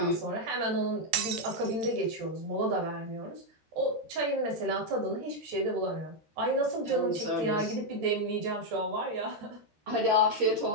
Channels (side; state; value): left; late; 14 ms